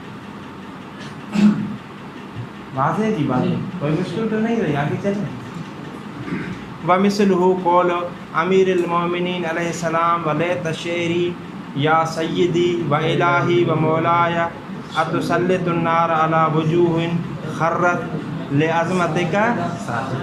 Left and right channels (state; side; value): identical; both; correlation 1.00